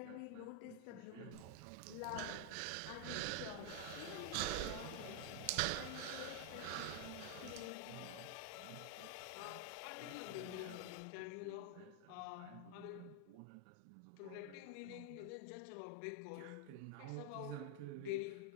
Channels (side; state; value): both; different; correlation 0.00